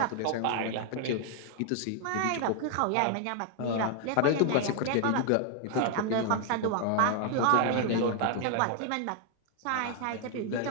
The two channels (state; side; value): different; both; correlation 0.00